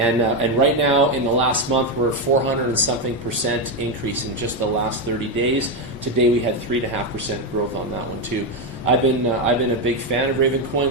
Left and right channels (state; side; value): normal; both; correlation 0.07